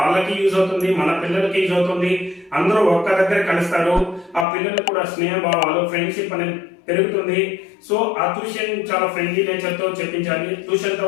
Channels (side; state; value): right; drops out; at 4.5 s